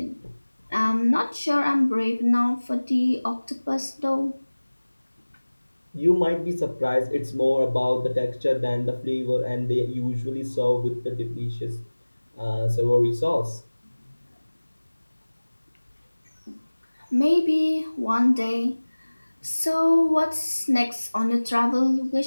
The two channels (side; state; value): both; inverted; correlation -1.00